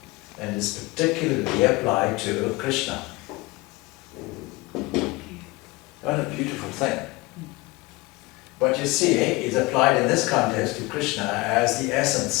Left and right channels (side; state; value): right; quieter; 22.8 dB